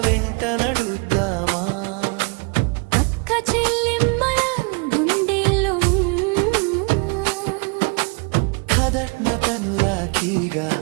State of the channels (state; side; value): quieter; left; 32.4 dB